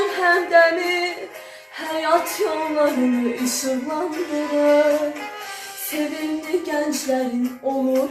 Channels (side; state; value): both; identical; correlation 1.00